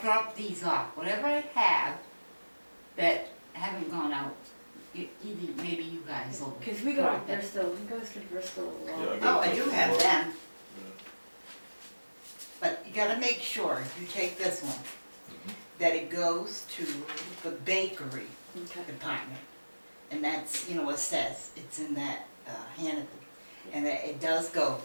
drop these off. Whatever I have that haven't gone out, either, maybe you guys will. Cause we go to drop it. Bristol, he goes to Bristol a lot. Yeah, I Oh, got I do Bristol have Road. them. but you gotta make sure, if you take this one, that it goes to the bakery Okay. department. And that's, you know, it says, it's in that, Hannaford, and that it does go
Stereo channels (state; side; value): inverted; both; correlation -1.00